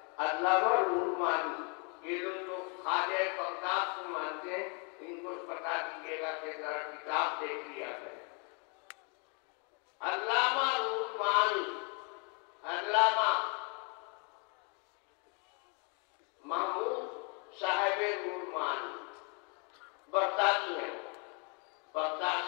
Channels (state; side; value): quieter; right; 36.0 dB